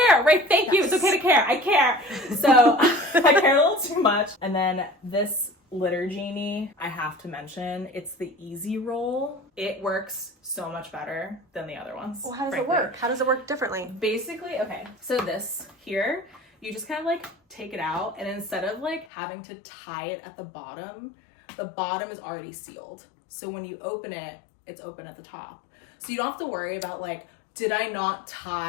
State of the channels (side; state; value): right; drops out; at 19.1 s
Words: right? Thank you. It's okay to care. I care. So I care a little too much. And then this litter genie, I have to mention, it's the easy roll. It works so much better than the other ones. Well, how does frankly. it work? How does it work differently? Basically, okay, so this here, you just kind of like take it out, and instead of like having to tie it at the bottom is already sealed. So when you open it, it's open at the top. So you don't have to worry about like, did I not